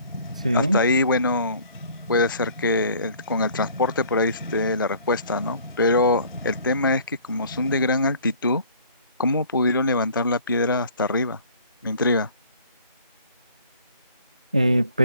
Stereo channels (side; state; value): both; inverted; correlation -0.52